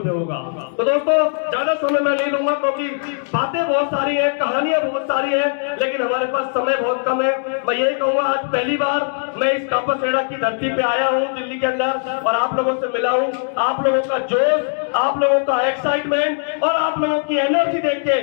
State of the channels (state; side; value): silent; right; digital silence